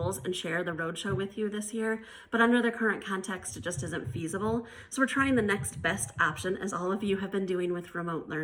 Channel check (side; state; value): both; identical; correlation 1.00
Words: and share the Roadshow with you this year, but under the current context, it just isn't feasible. So we're trying the next best option, as all of you have been doing with remote